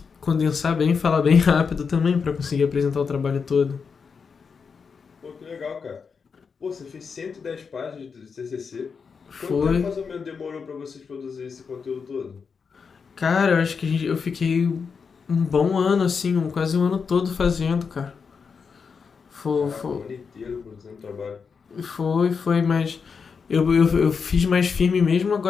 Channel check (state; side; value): quieter; right; 5.7 dB